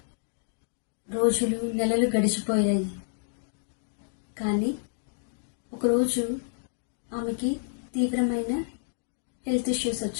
రోజులు, నెలలు గడిచిపోయాయి. కానీ ఒకరోజు ఆమెకి తీవ్రమైన హెల్త్ ఇష్యూస్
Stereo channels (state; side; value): silent; right; digital silence